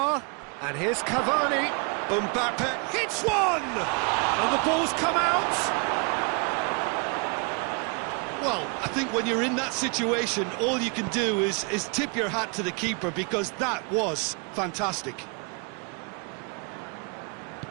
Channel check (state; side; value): quieter; left; 34.8 dB